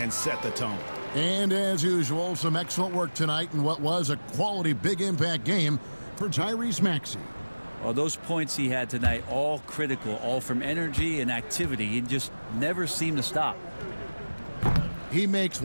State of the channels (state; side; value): inverted; both; correlation -1.00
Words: set the tone. And as usual, some excellent work tonight in what was a quality big impact game for Tyrese Maxey. Well, those points he had tonight, all critical, all from energy and activity. He just never seemed to stop. He makes